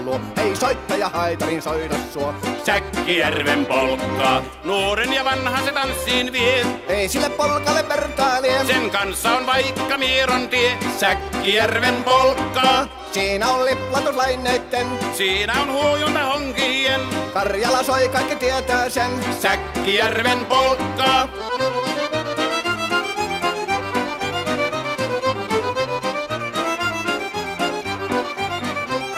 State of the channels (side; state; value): both; identical; correlation 1.00